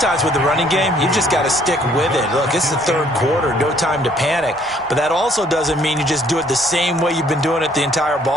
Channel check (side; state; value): both; normal; correlation 0.62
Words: with the running game, you've just got to stick with it. Look, it's the third quarter, no time to panic. But that also doesn't mean you just do it the same way you've been doing it the entire